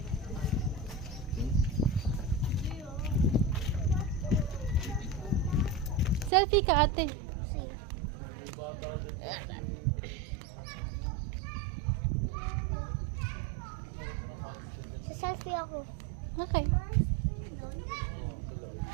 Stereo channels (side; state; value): left; drops out; at 6.3 s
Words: Selfie ka, ate. Sa selfie ako. Okay.